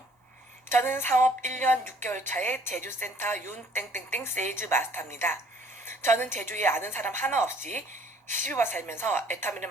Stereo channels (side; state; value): both; normal; correlation 0.59